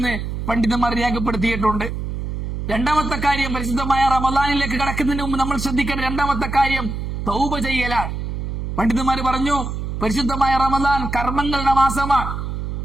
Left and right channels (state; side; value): noise; right; hum, 4 dB below the sound